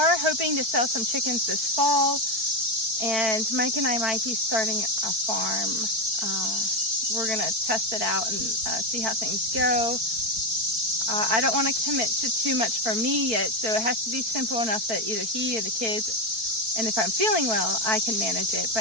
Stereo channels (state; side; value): late; left; 4.5 ms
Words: hoping to sell some chickens this fall, and Mike and I might be starting a farm. We're going to test it out and see how things go. I don't want to commit to too much for me yet, so it has to be simple enough that either he or the kids, and if I'm feeling well, I can manage it.